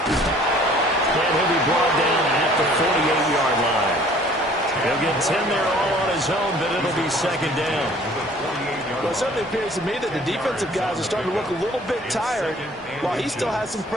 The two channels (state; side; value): normal; both; correlation 0.54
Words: And he'll be brought down at the 48-yard line. He'll get 10 there all on his own, but it'll be second down. Well, it certainly appears to me that the defensive guys are starting to look a little bit tired while he still has some